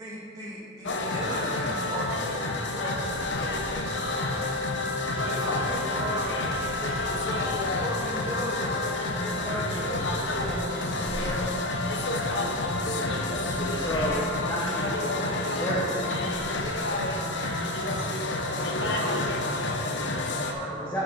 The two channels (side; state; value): both; normal; correlation 0.13